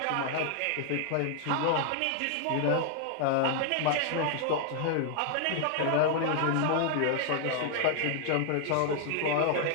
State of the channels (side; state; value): both; different; correlation 0.00